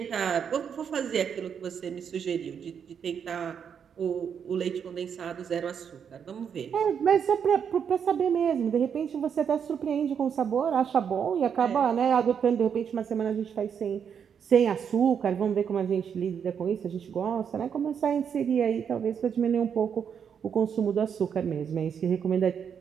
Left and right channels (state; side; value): quieter; left; 7.5 dB